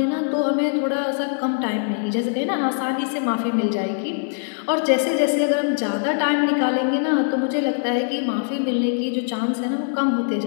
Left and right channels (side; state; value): right; silent; 58 dB below the other